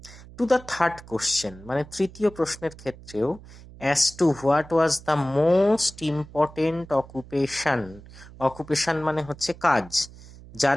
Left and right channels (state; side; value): noise; right; hum, 19 dB below the sound